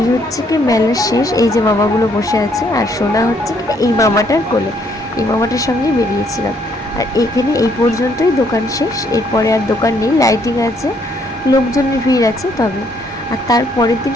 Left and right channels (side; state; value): both; normal; correlation 0.68